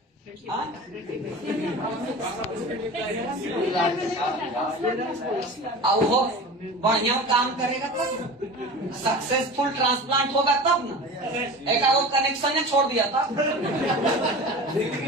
अब वो बढ़िया काम करेगा तब, सक्सेसफुल ट्रांसप्लांट होगा तब ना। एक वो कनेक्शन ने छोड़ दिया था।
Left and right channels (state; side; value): normal; both; correlation 0.34